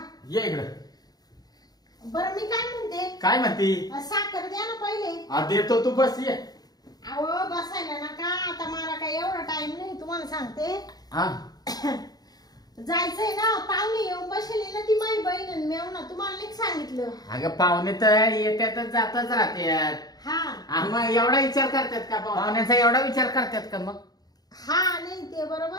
ये इकडं. बरं मी काय म्हणते, काय म्हणती? साखर द्या ना पहिले. हा देतो, तू बस ये. अहो बसायला नका, आता मला काय एवढा टाइम नाही, तुम्हाला सांगते. हा जायचंय ना, पाहुणे येऊन बसले ना, ती माझी बहीण आणि मेव ना, तुम्हाला नाही सांगितलं. अगं पाहुणे तर येत्यातच जातच राहतात. हा मग एवढा विचार करतात का पाहुण्यांचा? एवढा विचार करतात का मग? हा नाही ते बरोबर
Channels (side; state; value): right; late; 0.19 ms